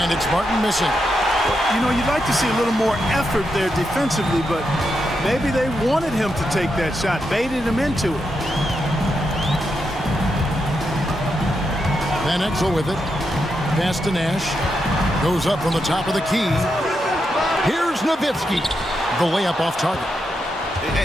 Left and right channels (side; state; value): both; normal; correlation 0.84